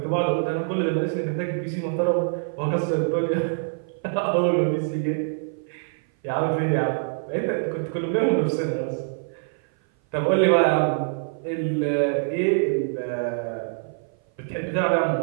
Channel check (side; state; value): left; silent; 57 dB below the other